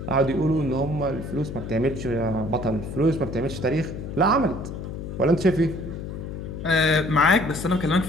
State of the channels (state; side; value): noise; left; hum, 8 dB below the sound